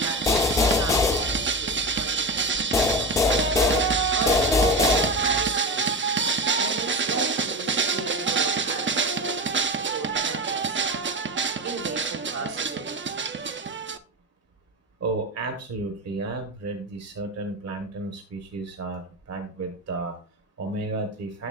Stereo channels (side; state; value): both; normal; correlation 0.21